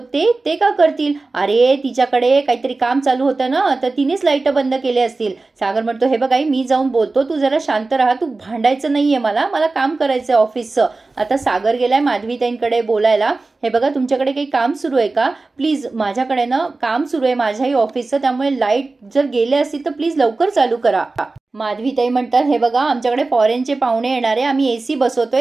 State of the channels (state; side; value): quieter; left; 3.5 dB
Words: का करतील, अरे तिच्याकडे काहीतरी काम चालू होतं ना, तर तिनेच लाईट बंद केले असतील। सागर म्हणतो, हे बघ आई, मी जाऊन बोलतो, तू जरा शांत राहा, तू भांडायचं नाहीये, मला काम करायचंय ऑफिसचं। आता सागर गेलाय माधवीताईंकडे बोलायला, हे बघा तुमच्याकडे काही काम सुरू आहे का, प्लीज माझ्याकडे ना काम सुरू आहे माझ्याही ऑफिसचं, त्यामुळे लाईट जर गेले असतील तर प्लीज लवकर चालू करा। माधवीताई म्हणतात, हे बघा आमच्याकडे फॉरेनचे पाहुणे येणारे, आम्ही एसी